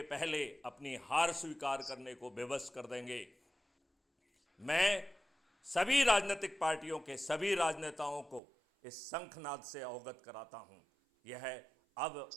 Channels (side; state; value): left; drops out; at 8.4 s